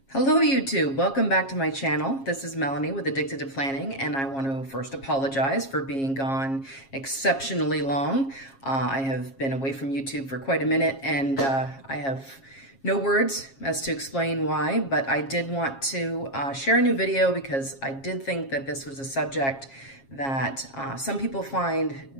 Hello YouTube, welcome back to my channel. This is Melanie with Addicted to Planning, and I want to first apologize for being gone exceptionally long. I have been away from YouTube for quite a minute, and I have no words as to explain why, but I did want to share a new video because I did think that this was a subject that some people find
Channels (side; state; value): right; late; 7.4 ms